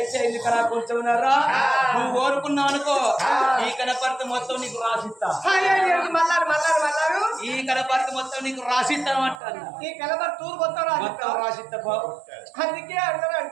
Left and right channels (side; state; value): left; drops out; at 9.4 s